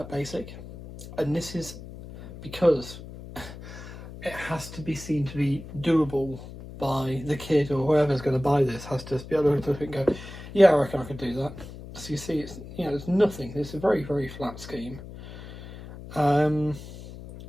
basic. And this is because it has to be seen to be doable by the kid or whoever's going to buy this. Has to be able to look at it and go, yeah, I reckon I could do that. So you see, it's it's nothing. It's a very, very flat scheme.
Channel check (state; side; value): noise; left; hum, 14 dB below the sound